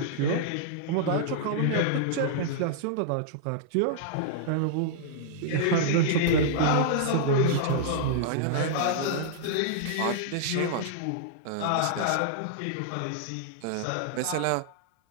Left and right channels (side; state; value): both; different; correlation -0.02